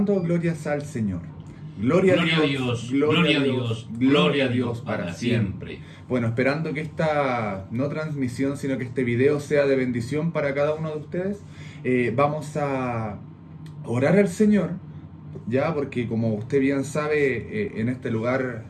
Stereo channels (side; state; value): both; identical; correlation 1.00